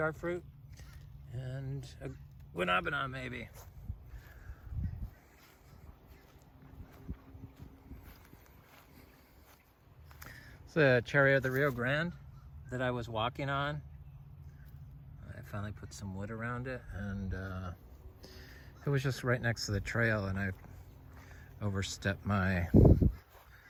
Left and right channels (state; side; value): identical; both; correlation 1.00